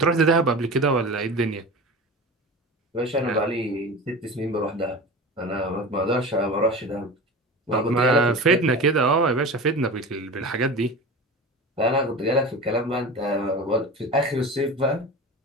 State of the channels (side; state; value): both; normal; correlation 0.31